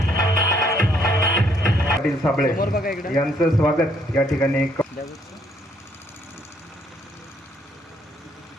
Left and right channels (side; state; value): both; normal; correlation 0.68